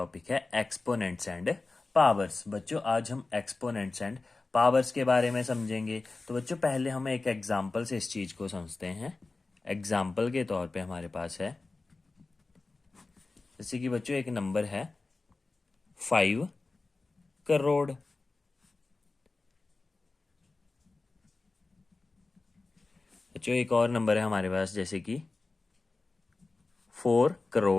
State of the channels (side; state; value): right; quieter; 3.6 dB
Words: है एक्सपोनेंट्स एंड पावर्स। बच्चों, आज हम एक्सपोनेंट्स एंड पावर्स के बारे में समझेंगे। तो बच्चों, पहले हम एक एग्जांपल से इस चीज़ को समझते हैं। एग्जांपल के तौर पे हमारे पास है, जैसे कि बच्चों एक नंबर है 5 करोड़। बच्चों एक और नंबर है हमारे पास, जैसे कि 4